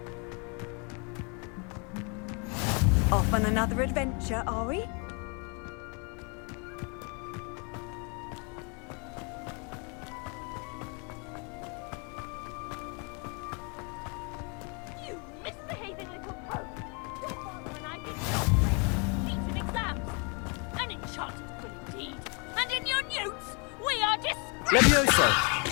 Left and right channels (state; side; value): quieter; right; 34.4 dB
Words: Off on another adventure, are we? You misbehaving little pug! Your father and I did not play feats in exams. An enchanted quill indeed. And in your newts, we are disgraced! Levioso.